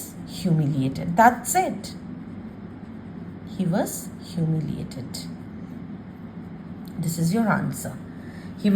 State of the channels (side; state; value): both; identical; correlation 1.00